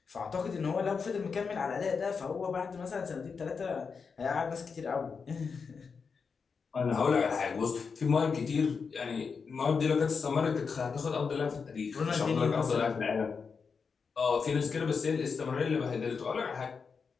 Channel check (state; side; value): quieter; right; 5.5 dB